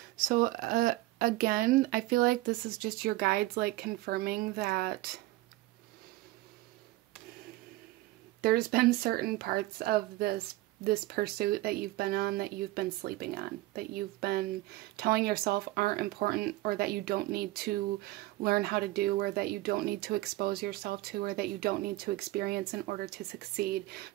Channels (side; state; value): left; quieter; 18.2 dB